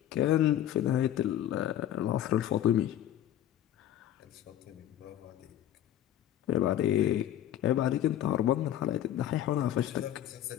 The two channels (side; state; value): right; quieter; 11.7 dB